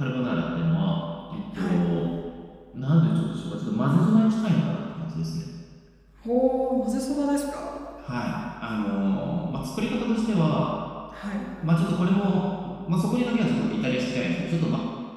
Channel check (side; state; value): both; identical; correlation 1.00